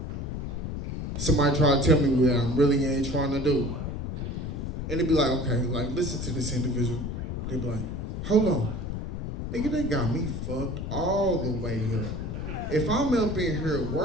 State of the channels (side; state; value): left; noise; rumble, 5 dB below the sound